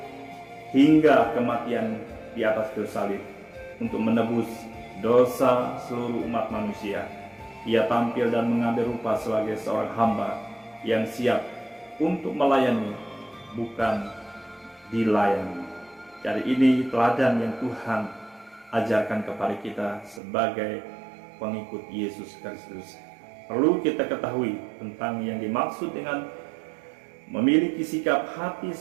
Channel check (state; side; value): drops out; left; at 20.2 s